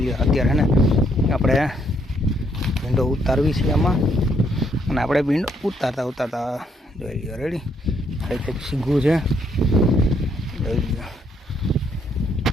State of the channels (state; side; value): normal; both; correlation 0.72